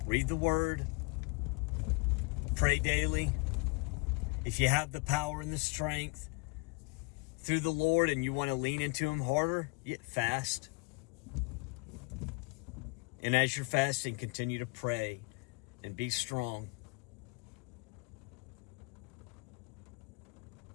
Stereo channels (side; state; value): right; quieter; 30.3 dB